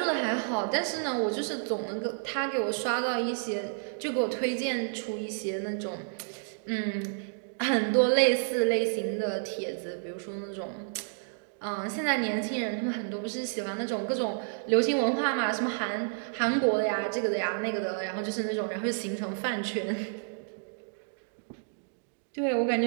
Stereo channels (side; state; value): left; silent; digital silence